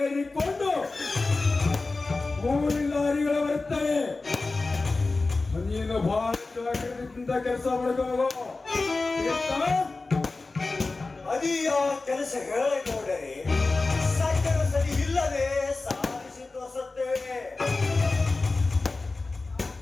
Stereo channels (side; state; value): right; quieter; 3.6 dB